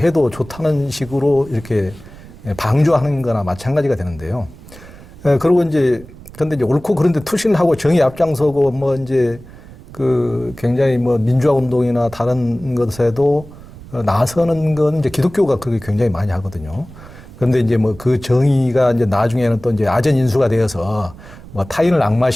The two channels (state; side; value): noise; right; rumble, 18 dB below the sound